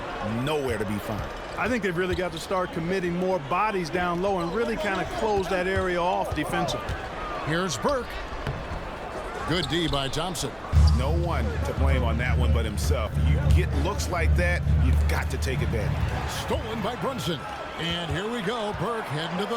nowhere to be found. I think they've really got to start committing more bodies down low and really kind of close that area off defensively. Here's Burke. Good D by Thompson. No one to blame on that one but himself. You get looks like that, you've got to take advantage. Stolen by Brunson. And here we go. Burke heading to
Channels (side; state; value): both; identical; correlation 1.00